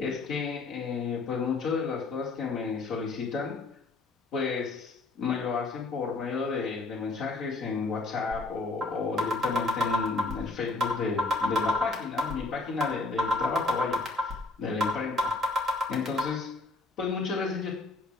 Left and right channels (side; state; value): right; quieter; 3.5 dB